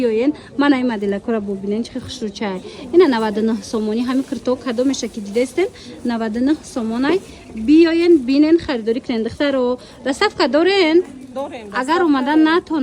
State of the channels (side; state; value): both; identical; correlation 1.00